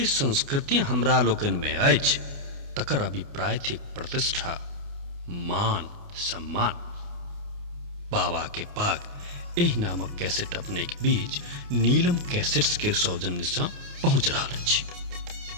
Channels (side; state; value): left; late; 29 ms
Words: संस्कृति हमरा लोकन में अछि तकर अभिप्राय थिक प्रतिष्ठा, मान सम्मान। बाबा के पाग एहि नामक कैसेट अपने के बीच नीलम कैसेट्स के सौजन्य से पहुंच रहा अछि।